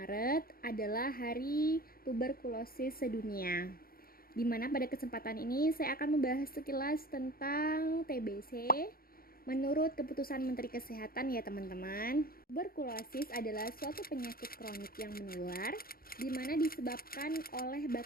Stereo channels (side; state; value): right; late; 0.43 ms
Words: adalah Hari Tuberkulosis Sedunia. Di mana pada kesempatan ini saya akan membahas sekilas tentang TBC menurut keputusan Menteri Kesehatan ya teman-teman. Tuberkulosis adalah suatu penyakit kronik yang menular di mana disebabkan oleh